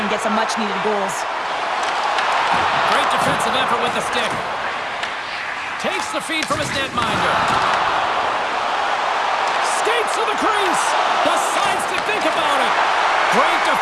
get some much-needed goals. Great defensive effort with the stick. Takes the feed from his netminder. Skates to the crease. Decides to think about it. Great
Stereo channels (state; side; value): identical; both; correlation 1.00